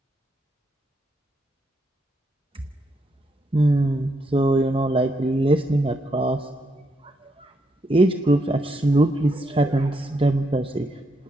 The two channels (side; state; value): both; normal; correlation 0.79